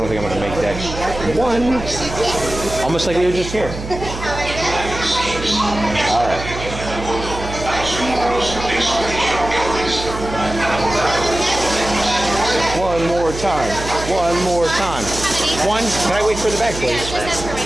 make that one. Almost like we were just here. All right. One more time. One more time. One. Can I wait for the back, please?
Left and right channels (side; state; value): right; noise; hum, 9 dB below the sound